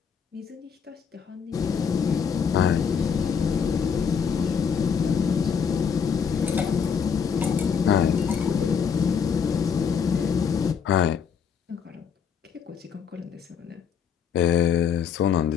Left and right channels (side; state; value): right; quieter; 6.8 dB